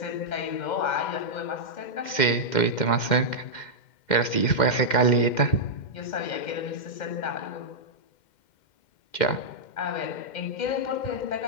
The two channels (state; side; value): late; right; 2.1 ms